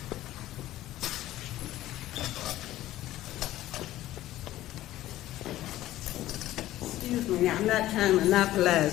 Excuse me, now, I'm not trying to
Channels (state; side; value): quieter; right; 14.8 dB